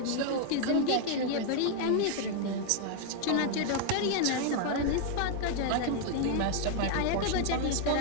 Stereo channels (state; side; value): different; both; correlation 0.00